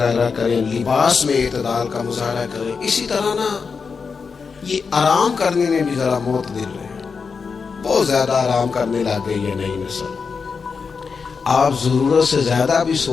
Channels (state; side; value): quieter; right; 5.3 dB